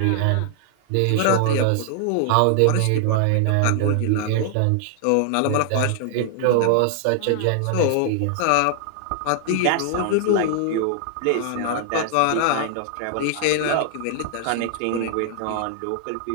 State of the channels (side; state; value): both; different; correlation 0.00